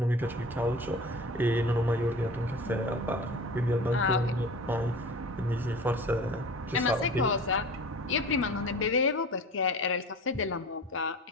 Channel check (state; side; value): normal; both; correlation 0.38